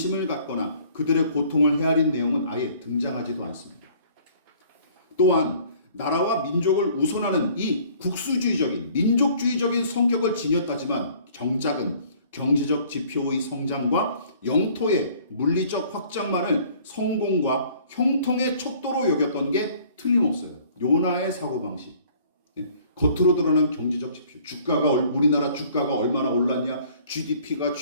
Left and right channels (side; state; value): both; inverted; correlation -0.55